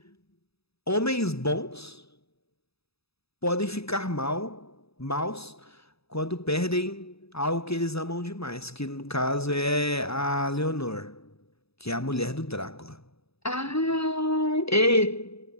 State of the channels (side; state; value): right; late; 0.78 ms